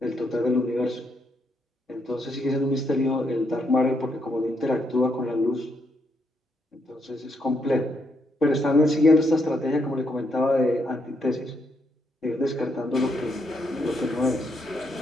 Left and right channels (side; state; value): both; normal; correlation 0.77